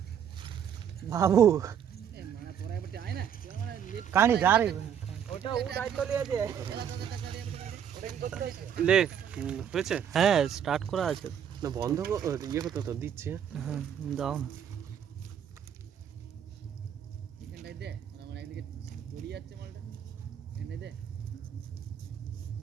বাবু, কানি যা রে ওটা ও দায়িত্ব লিয়েছে। লে হয়েছে? হ্যাঁ স্টার্ট করা আছে না বন্ধ ইয়ে করতে তো দিচ্ছি। হ্যাঁ দাও না।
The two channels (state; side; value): quieter; left; 8.8 dB